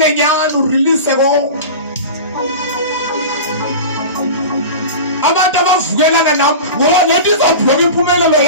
nyani urelease konke. Abantu abavukelana nami ngoba nethi izobhloka impumelelo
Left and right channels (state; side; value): inverted; both; correlation -0.31